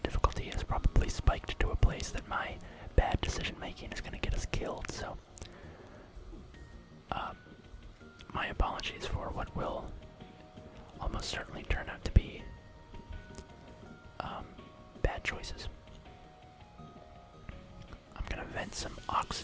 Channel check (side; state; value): both; identical; correlation 1.00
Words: has probably spiked to a place that my bad decision making is gonna get us killed, so my apologies for what will almost certainly turn out to be bad choices. I'm gonna vent some